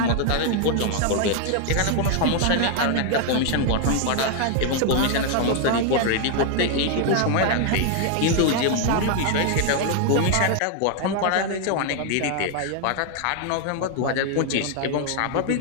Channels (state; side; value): different; both; correlation 0.00